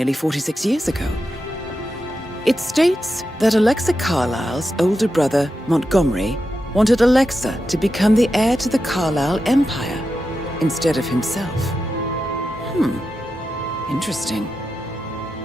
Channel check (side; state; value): both; normal; correlation 0.89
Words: 46 years ago. It states that Alexa Carlisle's older brother, Montgomery, wanted Alexa to become the heir to the Carlisle Empire instead of himself. Interesting.